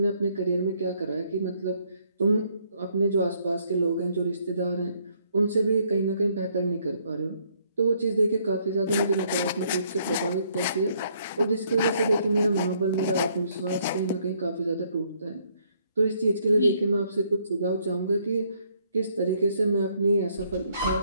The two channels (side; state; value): both; inverted; correlation -0.68